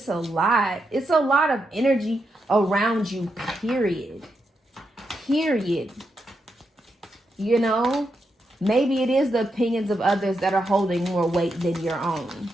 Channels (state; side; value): normal; both; correlation 0.84